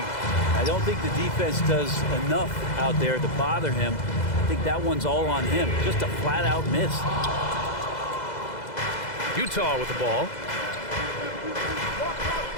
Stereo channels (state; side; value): late; right; 2.0 ms